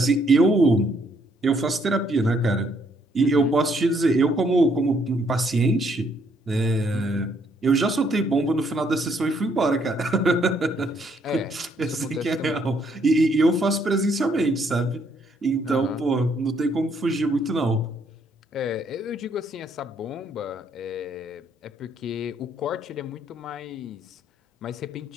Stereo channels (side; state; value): both; normal; correlation 0.69